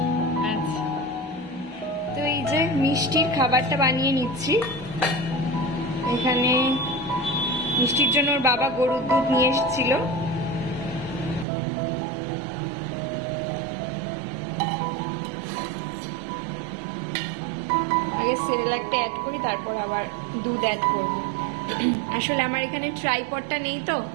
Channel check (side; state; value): left; drops out; at 11.5 s